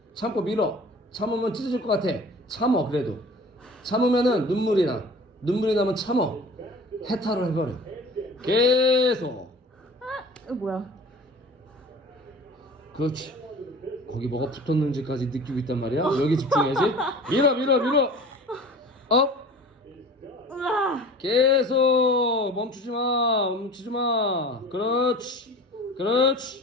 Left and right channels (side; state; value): both; normal; correlation 0.41